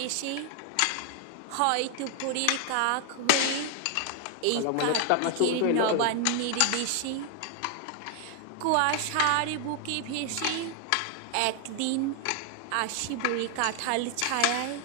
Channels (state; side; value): different; both; correlation 0.00